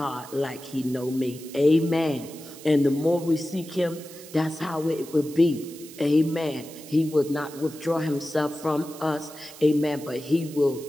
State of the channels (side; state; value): right; noise; hiss, 17 dB below the sound